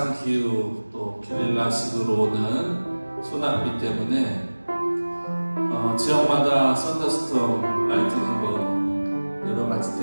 또 게릴라식으로 오는 소나비 때문에 지역마다 썬더스톰, 라이트닝 여러 가지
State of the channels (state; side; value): inverted; both; correlation -1.00